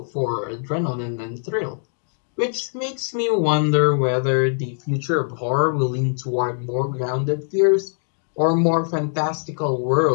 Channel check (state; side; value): silent; right; digital silence